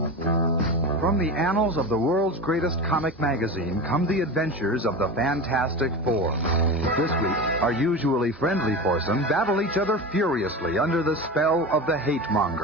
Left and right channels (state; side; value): normal; both; correlation 0.26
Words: From the annals of the world's greatest comic magazine come the adventures of the Fantastic Four. This week, our usually friendly foursome battle each other furiously under the spell of the hate